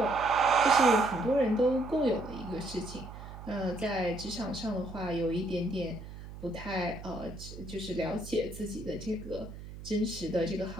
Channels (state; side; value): noise; right; hum, 13 dB below the sound